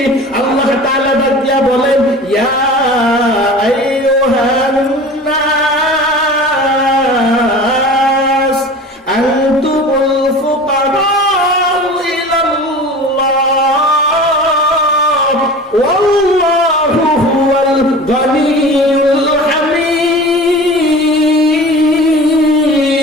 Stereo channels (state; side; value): normal; both; correlation 0.37